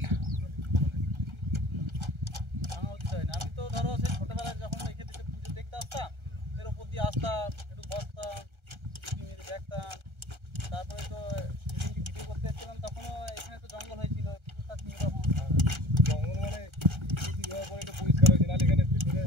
আমি তো ধরো সেই ছোটবেলায় যখন এখানে এসে পুজো দেখতে আসতাম এর উপর দিয়ে আসতাম একটু বসতাম মেরে দেখতাম তারপরে তো সেদিনকে ভিডিও করতে এসেছিলাম তখনও এখানে তো জঙ্গল হয়েছিল তখন জঙ্গল মানে হওয়ার পরে একটু পরিষ্কার হয়েছে নাহলে এখানে ভিতরে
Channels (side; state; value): left; late; 1.3 ms